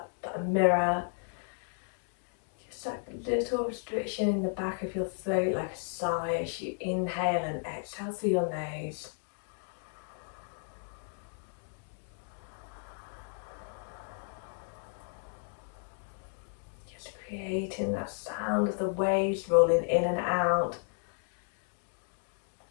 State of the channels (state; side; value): silent; right; 55 dB below the other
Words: a mirror. Just that little restriction in the back of your throat, like a sigh as you inhale and exhale through your nose. Just creating that sound of the waves rolling in and out.